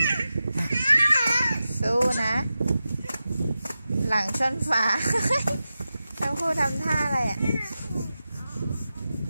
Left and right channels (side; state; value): both; inverted; correlation -0.92